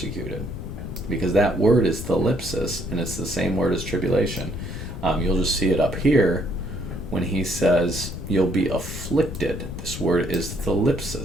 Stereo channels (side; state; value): left; noise; rumble, 8 dB below the sound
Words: Because that word is thalipsis, and it's the same word as tribulation. You'll just see it up here when he says you'll be afflicted. This word is